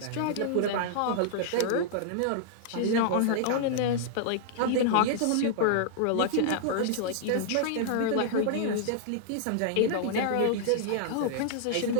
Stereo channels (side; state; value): both; different; correlation -0.01